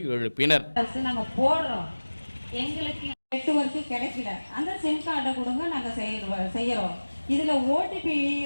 எழுப்பினர். எங்களுக்கு நெட்வொர்க் கிடைக்கல, அந்த சிம் கார்டை கொடுங்க, நாங்க செய்யறோம். இதுல OTP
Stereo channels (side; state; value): both; inverted; correlation -1.00